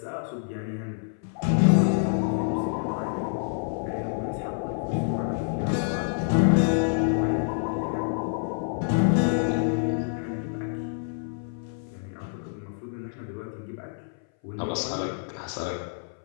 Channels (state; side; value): silent; right; 58 dB below the other